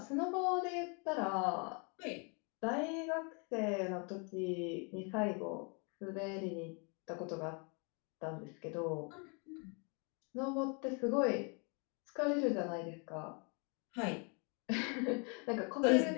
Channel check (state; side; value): quieter; right; 35.0 dB